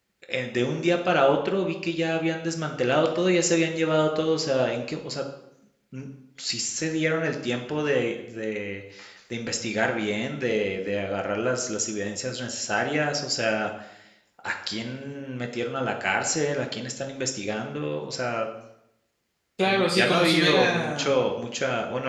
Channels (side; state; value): both; identical; correlation 1.00